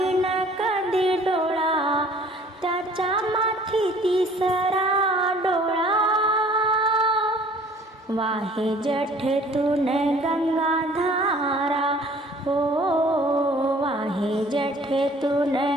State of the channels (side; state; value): both; normal; correlation 0.53